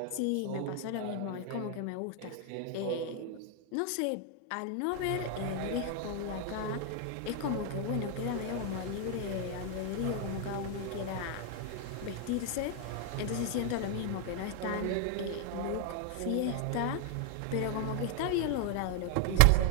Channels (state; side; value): different; both; correlation 0.00